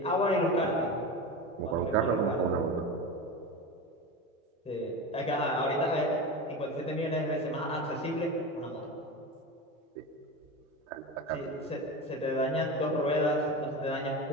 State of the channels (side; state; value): both; normal; correlation 0.25